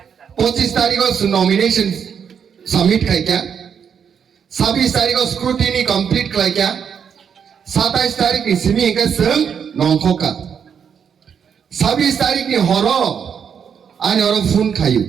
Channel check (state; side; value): quieter; left; 7.4 dB